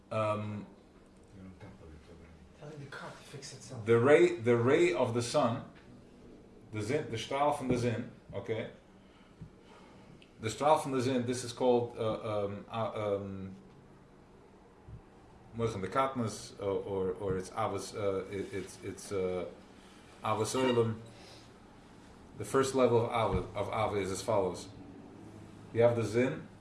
Telling the car to fix itself. the ray of the sun, the strahl from the zin, okay? The strahl from the zin, this is called Moichem de Katnas, or it's Avos, it's Avos Oilem. The first level of Ava is as follows. You have the Zin,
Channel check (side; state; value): both; identical; correlation 1.00